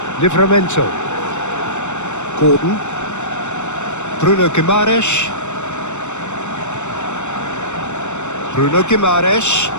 Livramento. Gordon. Bruno Guimaraes. Bruno Guimaraes.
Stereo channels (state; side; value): late; right; 0.84 ms